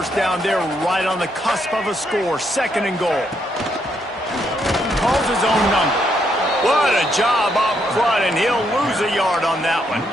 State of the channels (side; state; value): both; normal; correlation 0.75